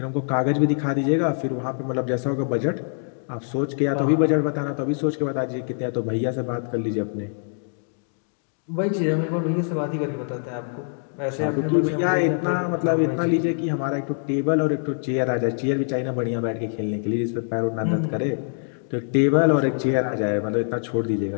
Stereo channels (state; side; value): silent; right; 62 dB below the other